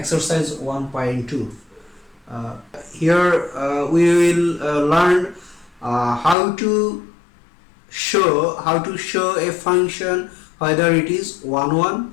1.2. Here we will learn how to show a function whether it is 1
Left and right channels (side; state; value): right; drops out; at 6.4 s